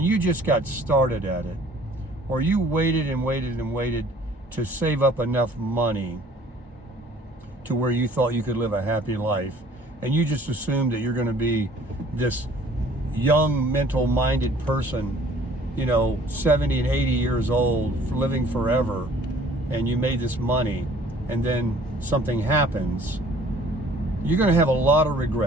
you just got started at it, or you waited and waited and waited to save up enough money to where you thought you could live a happy life, and you just assumed that you're going to be this young, mental-minded person, 70 and 80 years old, living forever, and you made this money, and then something happens, you're going to have a lot of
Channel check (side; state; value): both; normal; correlation 0.54